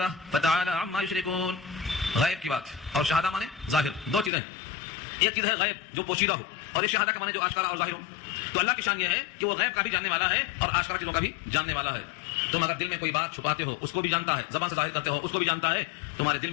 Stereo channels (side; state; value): right; drops out; at 4.3 s